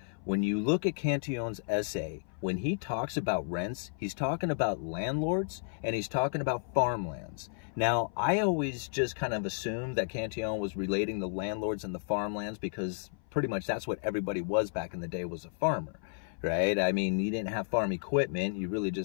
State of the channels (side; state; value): right; silent; 56 dB below the other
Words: When you look at Cantillon's essay, when he talks about rents, he's talking about landlords and he's talking about farmlands. Now, I always just kind of assumed that Cantillon was relating the landlords and the farmlands because pretty much that's what everybody was back in the day, was a farmer, right? I mean, you didn't have farm equipment. You really